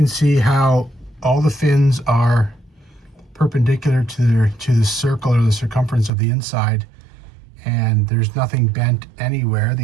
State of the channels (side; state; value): left; drops out; at 6.1 s